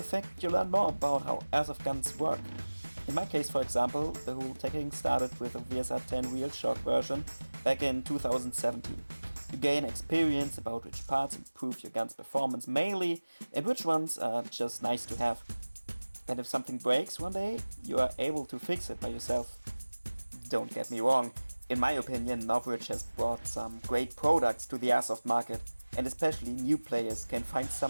you learn more about how airsoft guns work. In my case, for example, the whole teching started with a VSR-10 real shock version back in 2017. You gain experience about which parts improve your gun's performance mainly and which ones are just nice to have. And if something breaks one day, you are able to fix it by yourself. Don't get me wrong, in my opinion, Novritsch has brought some great products to the airsoft market, and especially new players can find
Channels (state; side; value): inverted; both; correlation -1.00